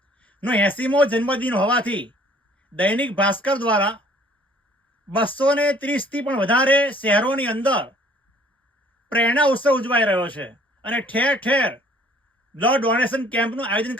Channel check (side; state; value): both; normal; correlation 0.57